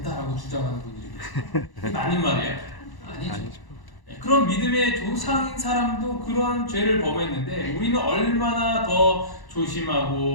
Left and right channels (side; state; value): right; late; 1.0 ms